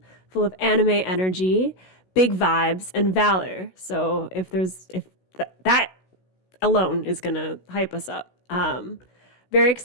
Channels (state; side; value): late; right; 16 ms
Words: full of anime energy, big vibes, and valor. So if that alone is gonna hype us up. Very